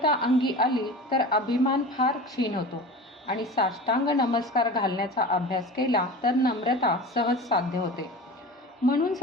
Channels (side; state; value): both; normal; correlation 0.34